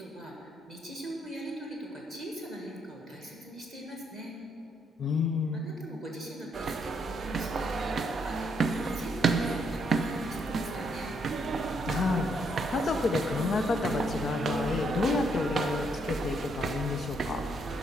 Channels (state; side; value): normal; both; correlation 0.74